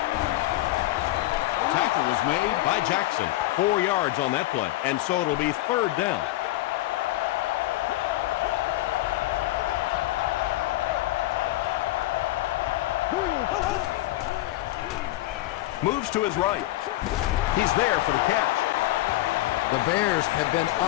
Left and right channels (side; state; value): right; quieter; 17.0 dB